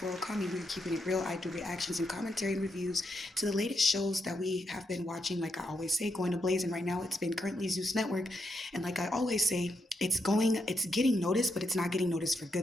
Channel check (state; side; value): normal; both; correlation 0.81